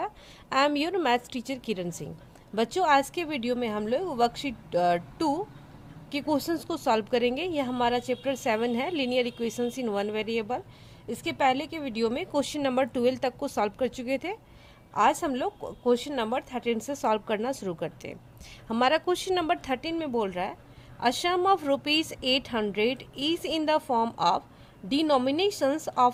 I am your maths teacher Kiran Singh. बच्चों, आज के video में हम लोग वर्कशीट 2 के क्वेश्चंस को सॉल्व करेंगे। यह हमारा चैप्टर 7 है, linear equations in one variable. इसके पहले के वीडियो में क्वेश्चन नंबर 12 तक को सॉल्व कर चुके थे। आज हम लोग क्वेश्चन नंबर 13 से सॉल्व करना शुरू करते हैं। हमारा क्वेश्चन नंबर 13 में बोल रहा है a sum of ₹800 is in the form of denominations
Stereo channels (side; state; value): both; identical; correlation 1.00